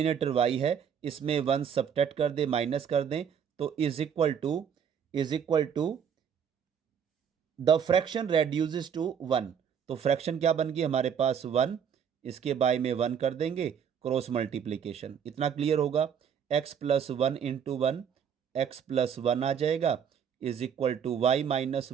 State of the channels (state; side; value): quieter; left; 7.8 dB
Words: y है इसमें 1 सब्ट्रैक्ट कर दें, माइनस कर दें, तो is equal to the fraction reduces to 1। तो फ्रैक्शन क्या बन गई हमारे पास? 1, इसके बाय में 1 कर देंगे, क्रॉस मल्टीप्लीकेशन। इतना क्लियर होगा? x plus 1 into 1, X plus 1 आ जाएगा, is equal to Y minus